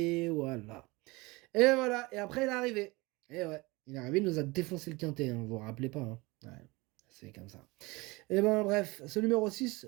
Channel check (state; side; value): quieter; left; 23.7 dB